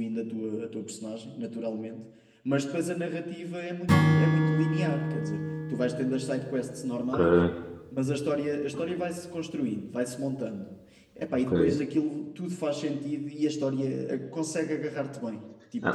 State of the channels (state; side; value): identical; both; correlation 1.00